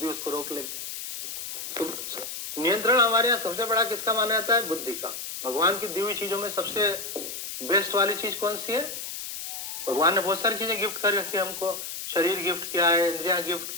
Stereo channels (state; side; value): noise; left; hiss, 7 dB below the sound